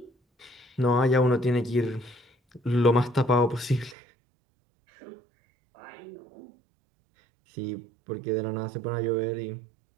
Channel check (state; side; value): drops out; left; at 4.0 s